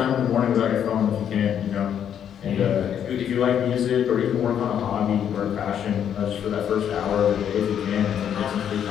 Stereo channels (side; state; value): right; quieter; 9.0 dB